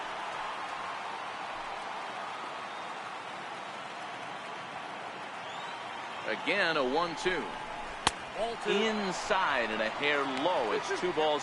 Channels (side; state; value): both; identical; correlation 1.00